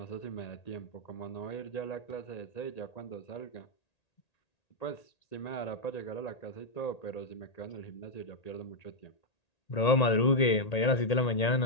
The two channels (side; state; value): right; late; 1.8 ms